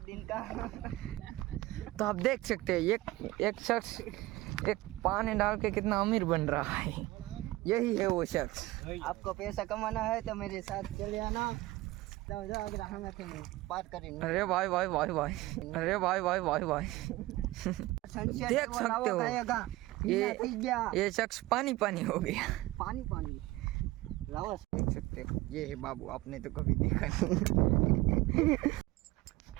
दिन का। तो आप देख सकते हैं एक शख्स एक पानी डाल के कितना अमीर बन रहा है। यही है वो शख्स। आपको पैसा कमाना है तो मेरे साथ चले आना। तो अगर हमें बात करें। अरे भाई भाई भाई भाई, अरे भाई भाई भाई भाई, देख सकते हो ये शख्स पानी पानी हो गया। पानी पानी रावस देख सकते हो, ये है बाबू, आपने तो कभी देखा नहीं।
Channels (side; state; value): left; quieter; 18.6 dB